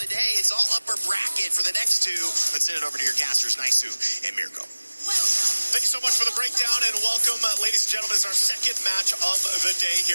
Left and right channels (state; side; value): inverted; both; correlation -1.00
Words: day. It's all upper bracket for the next 2. Let's send it over to your casters, Naisu and Mirko. Thank you so much for the breakdown and welcome, ladies and gentlemen. It's our second match of the day